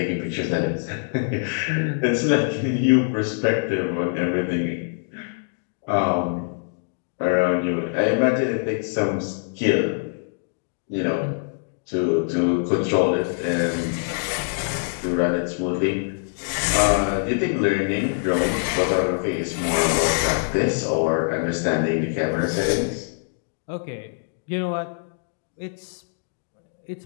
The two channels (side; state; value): right; silent; digital silence